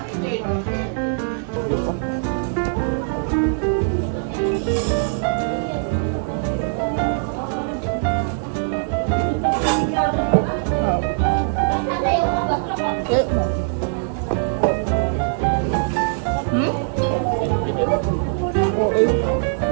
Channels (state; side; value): silent; left; 62 dB below the other